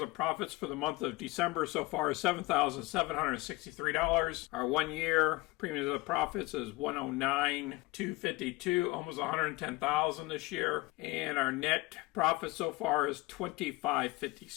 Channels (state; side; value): quieter; right; 21.5 dB